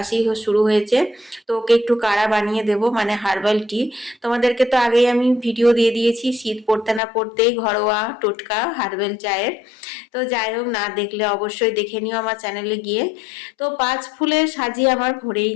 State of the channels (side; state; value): right; drops out; at 7.0 s